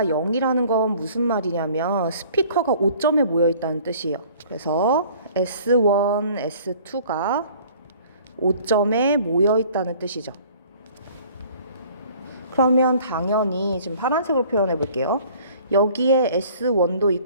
0이라는 건 무슨 말이냐면 스피커가 5점에 모여 있다는 뜻이에요. 그래서 S1, S2가 5점에 모여 있다는 뜻이죠. 그러면 당연히 지금 파란색으로 표현해 볼게요. 여기에 S1도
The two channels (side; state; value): both; inverted; correlation -0.52